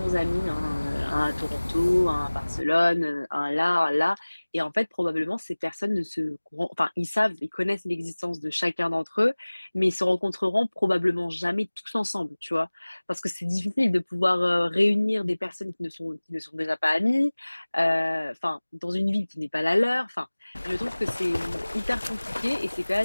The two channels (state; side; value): inverted; both; correlation -1.00